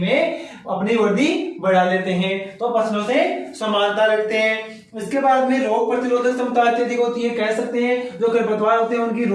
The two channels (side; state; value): both; identical; correlation 1.00